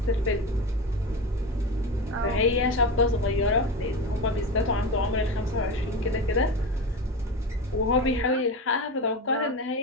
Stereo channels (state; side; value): normal; both; correlation 0.24